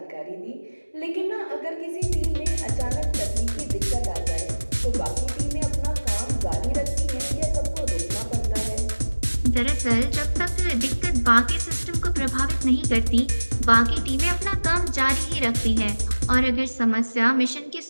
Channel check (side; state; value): both; inverted; correlation -1.00